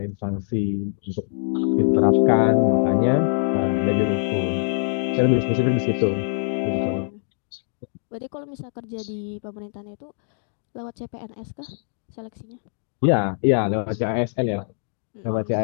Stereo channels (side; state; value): right; silent; digital silence